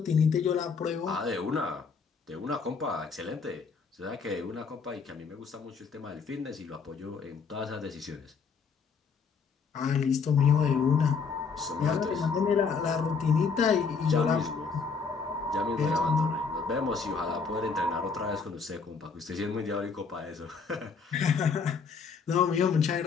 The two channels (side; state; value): right; quieter; 5.4 dB